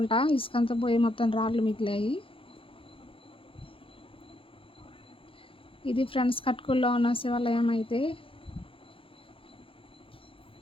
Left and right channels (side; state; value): right; late; 0.26 ms